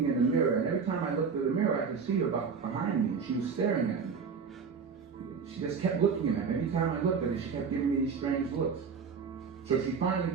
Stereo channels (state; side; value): quieter; left; 5.8 dB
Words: in the mirror. And every time I looked at the mirror, I could see her behind me. And she was staring at me. She just kept looking at me. Every time I looked at her, she kept giving me these strange looks. So she